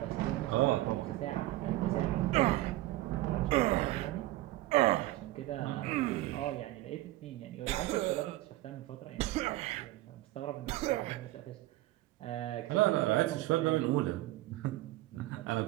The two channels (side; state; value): left; quieter; 17.0 dB